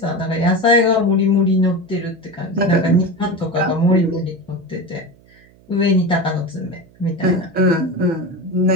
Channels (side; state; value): right; noise; hum, 28 dB below the sound